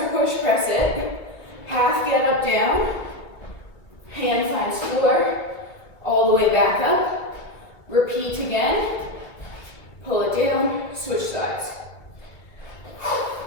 push press it. Half get up, down. Hand finds floor. All the way back up. Repeat again. Pull it down. Switch sides.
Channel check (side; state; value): right; late; 2.9 ms